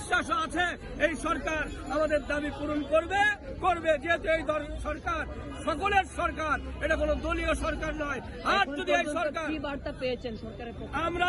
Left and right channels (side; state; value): both; identical; correlation 1.00